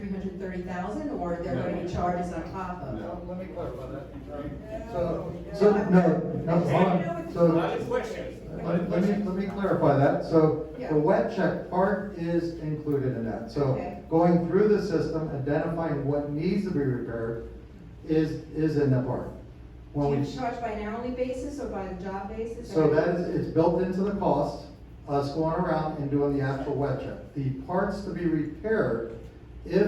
or are there going to be charges on top of? No. Let me clarify that. So, no, hold on. So, let me clarify that. So, Yeah. the wet check part is included in that. So, Okay. going through the system, identifying what needs to be repaired is in the part. Do When you we, charge by an hourly basis or by the job basis? so that is, it's built into the cost, us going around and doing the actual wet check. The parts to be repaired,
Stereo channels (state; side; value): identical; both; correlation 1.00